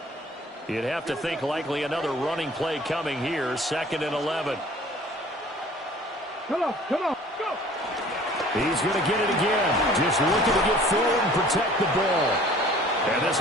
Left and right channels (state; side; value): normal; both; correlation 0.50